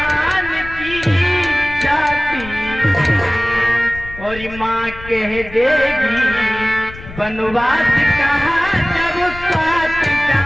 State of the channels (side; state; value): left; noise; rumble, 15 dB below the sound